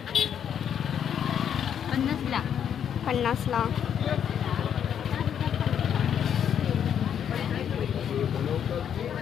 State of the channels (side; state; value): right; quieter; 8.8 dB